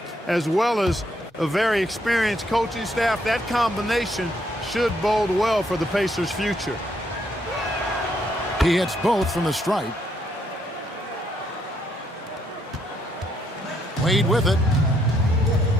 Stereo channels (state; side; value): normal; both; correlation 0.73